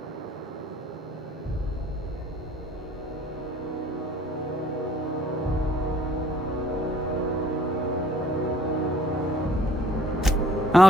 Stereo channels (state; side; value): normal; both; correlation 0.57